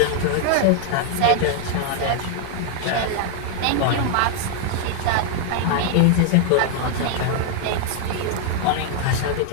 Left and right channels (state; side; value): different; both; correlation 0.00